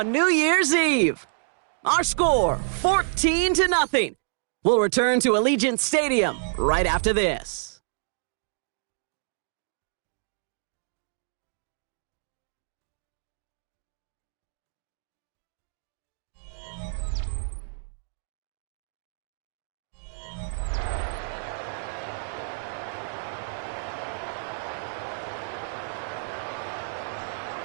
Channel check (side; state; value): left; silent; digital silence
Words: New Year's Eve. Our score, 14-0. We'll return to Allegiant Stadium right after this.